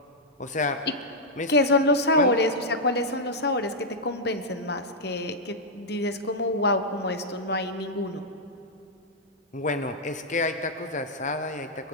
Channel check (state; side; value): normal; both; correlation -0.05